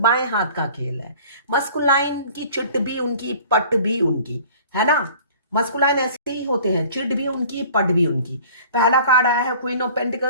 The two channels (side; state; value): both; inverted; correlation -0.48